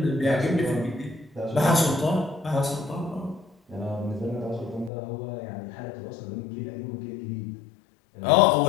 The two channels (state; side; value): drops out; right; at 4.9 s